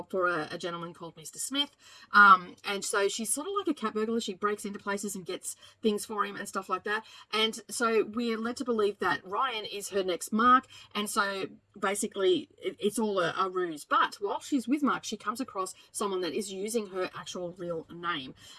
for a gentleman called Mr. Smith, and so she's sort of like a cat burglar. She breaks into places and gets things for him and stuff like that, and so we're led to believe that Ryan is her next Mark, and so basically it's all a ruse. But while she's with Mark, she comes across someone that is using her actual real name,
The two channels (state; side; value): identical; both; correlation 1.00